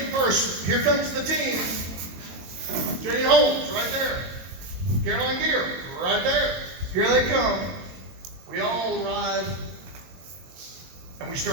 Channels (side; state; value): left; late; 22 ms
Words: here comes the team. Jane Holmes, right there. Caroline Gear, right there. Here they come. We all arrive, and we